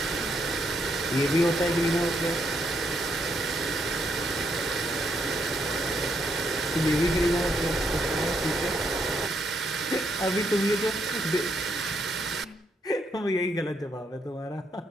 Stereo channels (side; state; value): both; normal; correlation 0.76